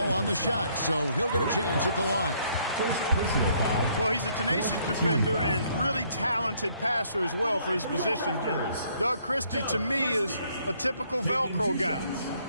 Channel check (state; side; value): inverted; both; correlation -0.66